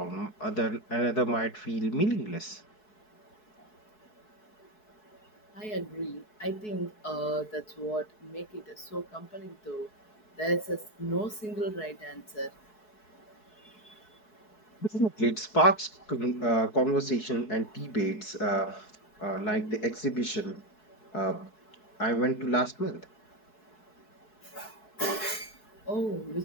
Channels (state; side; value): late; right; 4.7 ms